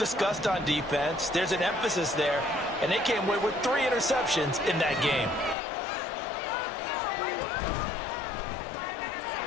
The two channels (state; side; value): drops out; right; at 5.6 s